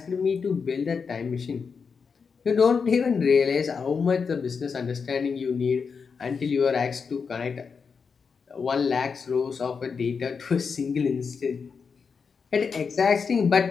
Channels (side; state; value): right; quieter; 5.6 dB